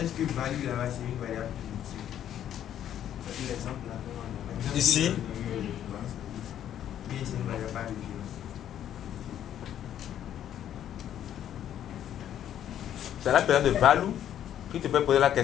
que value là-bas c'est une variable primitive? L'exemple là. Ici. Oui, c'est une variable par référence. C'est la personne de Valou qui te peut poser la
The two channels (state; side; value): quieter; right; 10.6 dB